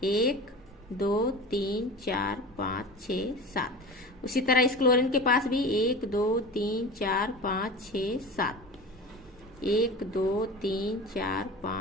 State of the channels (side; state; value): both; normal; correlation 0.33